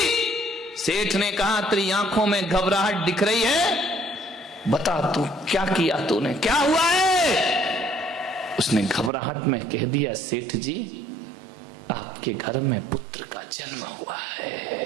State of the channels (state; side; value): drops out; left; at 9.1 s